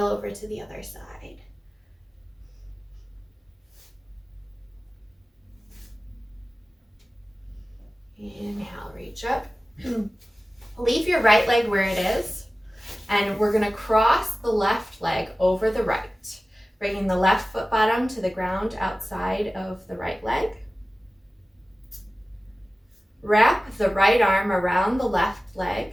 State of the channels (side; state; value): both; normal; correlation 0.96